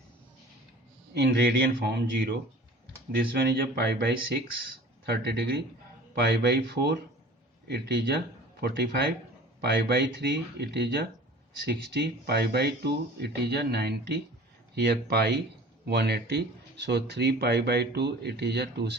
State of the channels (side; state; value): both; normal; correlation 0.43